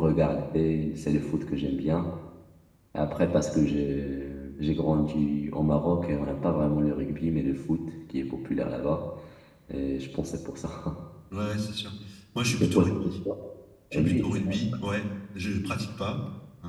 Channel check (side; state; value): both; identical; correlation 1.00